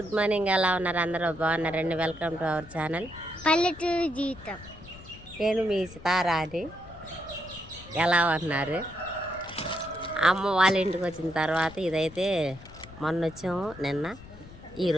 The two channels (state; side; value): noise; left; rumble, 18 dB below the sound